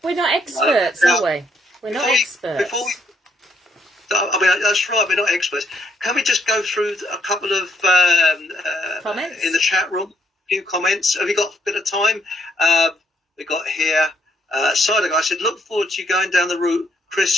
We're not experts, are we? We're not experts. That's right, we're not experts. Can we just go through a couple of comments in the chat room? A few comments. Have you got a bit of time? We got here, Cider Guy said, look forward to you going down the route,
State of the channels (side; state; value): both; normal; correlation 0.72